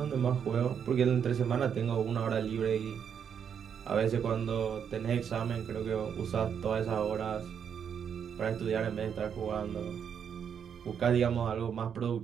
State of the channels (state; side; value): quieter; left; 7.7 dB